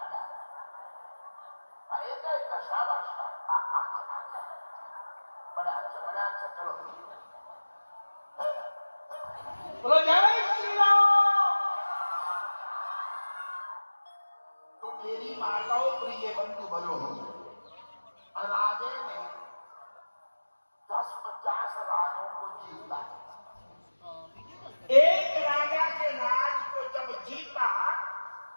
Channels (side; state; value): both; inverted; correlation -1.00